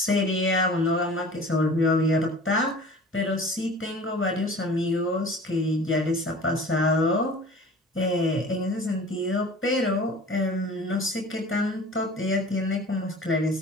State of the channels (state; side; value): normal; both; correlation 0.43